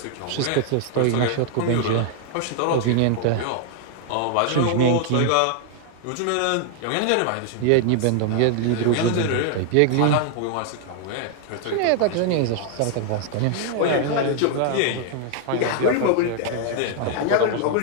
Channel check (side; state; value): both; different; correlation 0.00